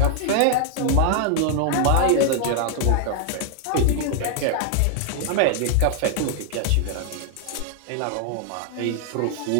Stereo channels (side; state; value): both; different; correlation 0.00